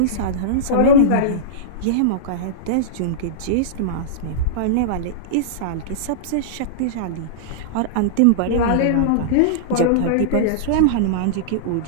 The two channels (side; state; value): both; different; correlation -0.03